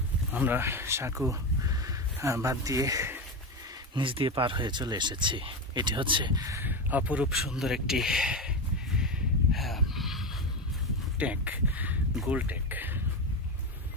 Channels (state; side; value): normal; both; correlation 0.17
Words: আমরা সাঁকো বাদ দিয়ে নিচ দিয়ে পার হয়ে চলে এসেছি। এটি হচ্ছে অপরূপ সুন্দর একটি ট্যাঙ্ক, গোল ট্যাঙ্ক।